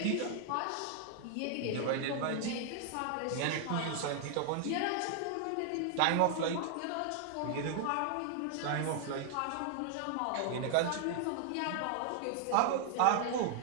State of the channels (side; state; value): both; different; correlation 0.00